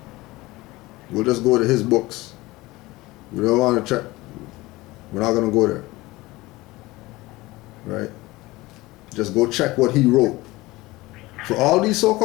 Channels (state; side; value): quieter; right; 20.2 dB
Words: We'll just go to his books. We don't want to check. We're not going to go there. Right? Just go check what he wrote. for all these